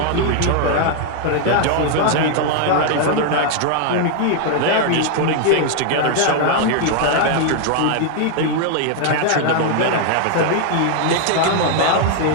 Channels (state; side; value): different; both; correlation 0.00